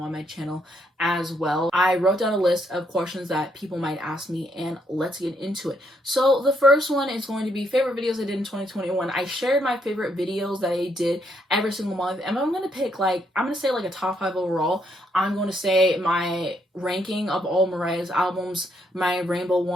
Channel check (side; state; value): both; normal; correlation 0.74